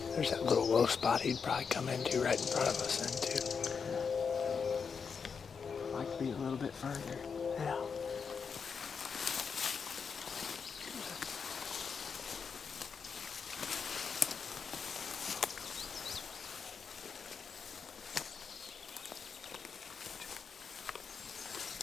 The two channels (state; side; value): quieter; right; 5.9 dB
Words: there's that little low spot he'd probably come into right in front of us then too. Like to be a little bit further. Yeah.